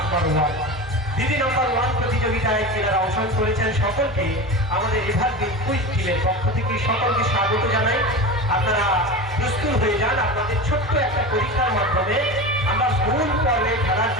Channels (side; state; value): both; normal; correlation 0.27